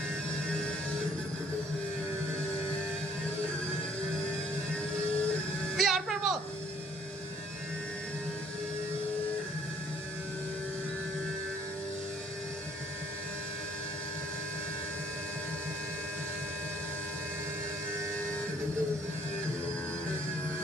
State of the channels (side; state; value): both; normal; correlation 0.61